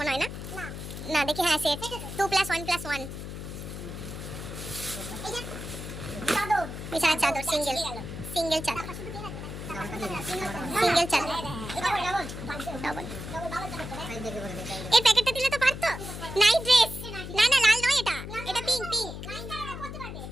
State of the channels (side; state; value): left; noise; hum, 8 dB below the sound